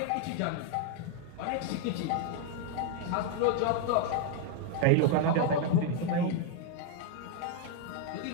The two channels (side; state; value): both; different; correlation 0.00